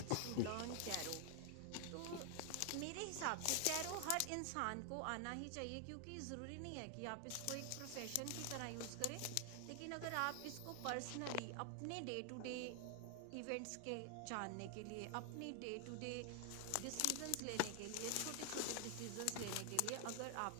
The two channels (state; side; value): different; both; correlation 0.00